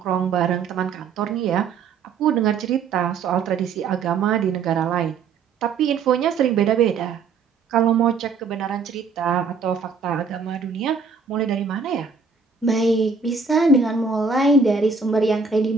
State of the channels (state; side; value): quieter; left; 5.3 dB